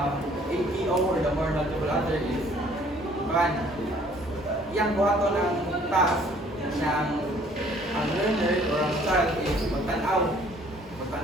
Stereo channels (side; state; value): both; normal; correlation 0.58